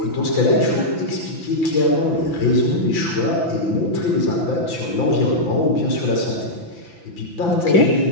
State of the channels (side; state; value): right; late; 5.9 ms